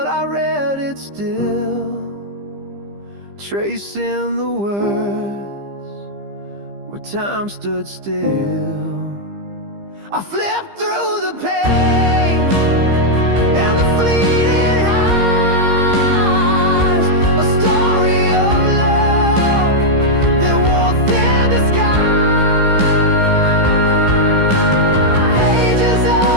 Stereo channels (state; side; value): late; left; 15 ms